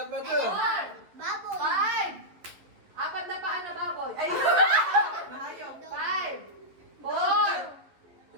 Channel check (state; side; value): late; left; 12 ms